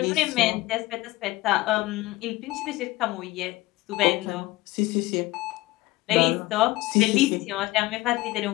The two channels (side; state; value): right; quieter; 19.3 dB